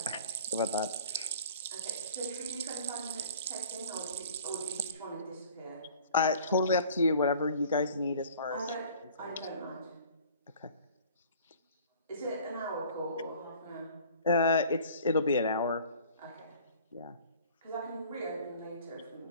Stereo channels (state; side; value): inverted; both; correlation -0.49